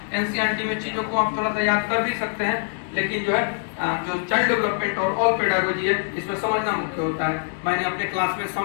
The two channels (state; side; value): silent; right; digital silence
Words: एनसीईआरटी में चीजों को आप थोड़ा सा याद कर भी सकते हैं, लेकिन जो है जो चाइल्ड डेवलपमेंट और ऑल पेडागोजी है इसमें समझना मुख्य होता है। मैंने अपने क्लास में